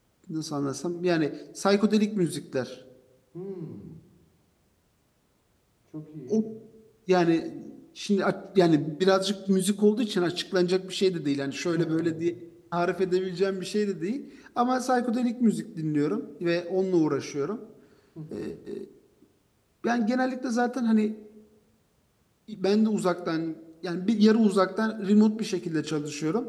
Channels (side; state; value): both; identical; correlation 1.00